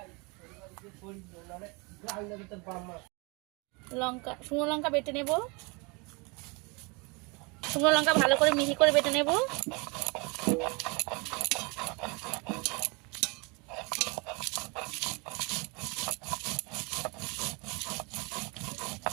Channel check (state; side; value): quieter; left; 29.3 dB